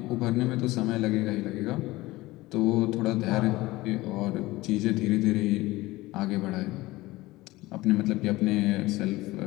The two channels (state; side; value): quieter; right; 19.2 dB